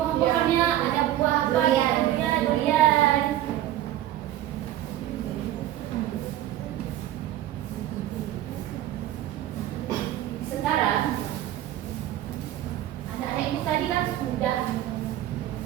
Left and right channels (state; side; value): quieter; left; 13.0 dB